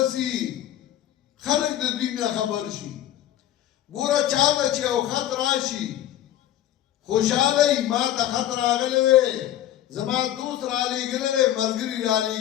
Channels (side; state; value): right; quieter; 12.6 dB